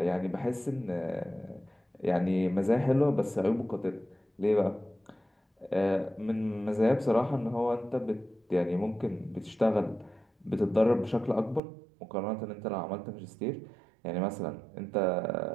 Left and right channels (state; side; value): drops out; left; at 11.6 s